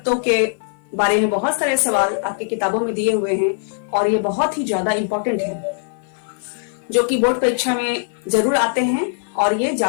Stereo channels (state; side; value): silent; right; 55 dB below the other